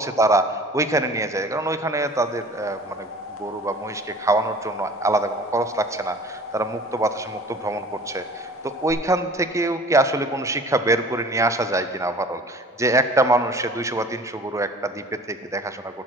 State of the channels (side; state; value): both; normal; correlation 0.44